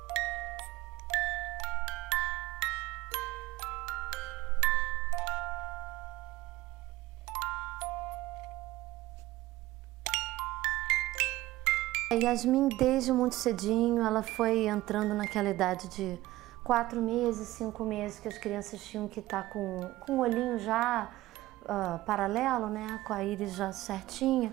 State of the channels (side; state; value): left; quieter; 17.2 dB